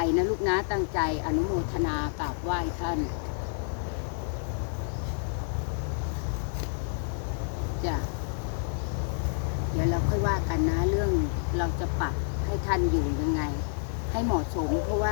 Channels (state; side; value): silent; right; 59 dB below the other